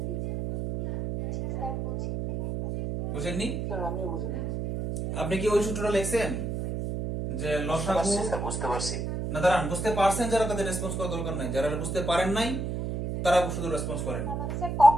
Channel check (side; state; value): right; noise; hum, 3 dB below the sound